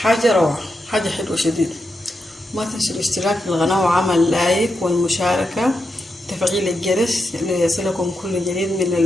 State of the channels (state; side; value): normal; both; correlation 0.86